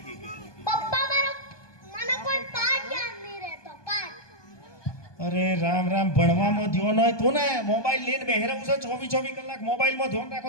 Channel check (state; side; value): late; right; 1.2 ms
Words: પપ્પા મને કોઈ પાઠ યાદ નહીં રહેતો. પાઠ અરે રામ રામ, ભણવામાં ધ્યાન હોય તો ને. મોબાઈલ લઈને બેહી રહું છે 24 કલાક. મોબાઈલમાં ધ્યાન રાખો